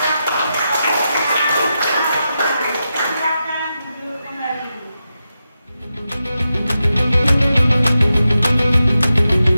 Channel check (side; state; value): both; inverted; correlation -0.89